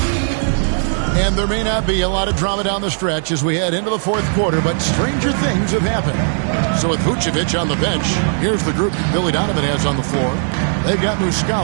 And there may not be a lot of drama down the stretch as we head into the fourth quarter, but stranger things have happened. So with Vucevic on the bench, here's the group Billy Donovan has on the floor. They've got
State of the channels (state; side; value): silent; left; digital silence